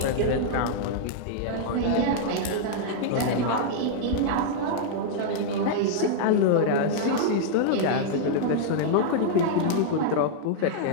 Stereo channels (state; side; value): different; both; correlation -0.01